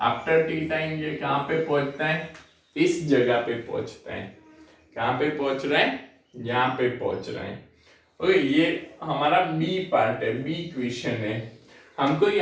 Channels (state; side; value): identical; both; correlation 1.00